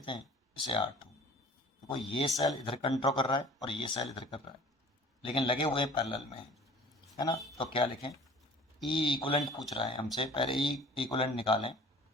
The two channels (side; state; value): both; normal; correlation 0.46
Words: हैं, इसे R2। देखो ये सेल इधर कंट्रोल कर रहा है और ये सेल इधर कर रहा है, लेकिन लगे हुए पैरेलल में है ना। तो क्या लिखें, ई इक्वलेंट पूछ रहा है हमसे, पहले ई इक्वलेंट निकालें।